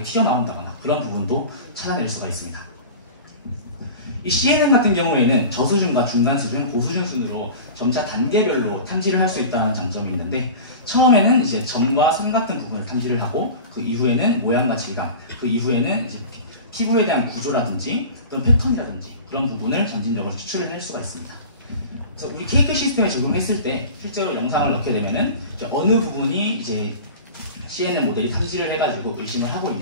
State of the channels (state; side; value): inverted; both; correlation -0.34